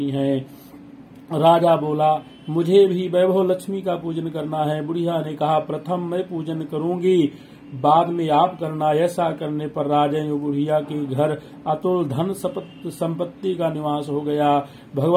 हैं। राजा बोला, मुझे भी वैभव लक्ष्मी का पूजन करना है। बुढ़िया ने कहा, प्रथम मैं पूजन करूंगी, बाद में आप करना। ऐसा करने पर राजा और बुढ़िया के घर अतुल धन संपत्ति का निवास हो गया।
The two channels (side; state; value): both; identical; correlation 1.00